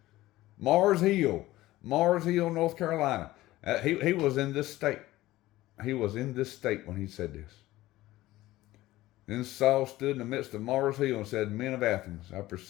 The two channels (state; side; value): quieter; right; 16.8 dB